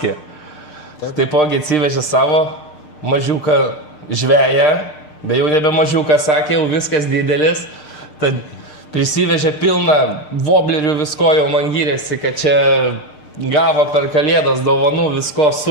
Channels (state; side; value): late; right; 6.6 ms